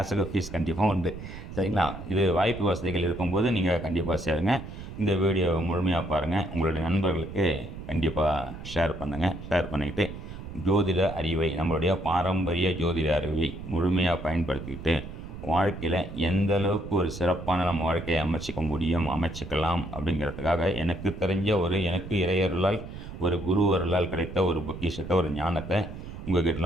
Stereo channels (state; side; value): noise; right; rumble, 11 dB below the sound